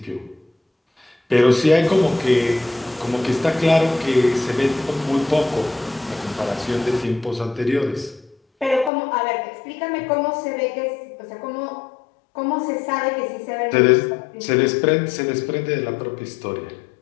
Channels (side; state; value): right; drops out; at 8.9 s